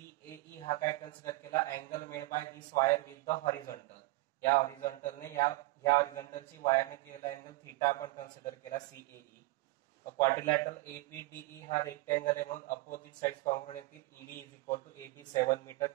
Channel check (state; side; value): quieter; left; 21.3 dB